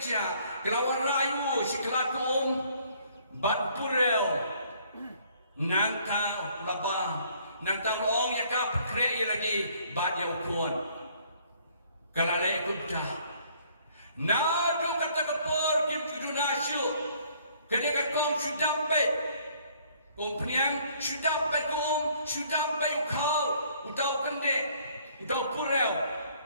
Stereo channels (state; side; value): inverted; both; correlation -0.61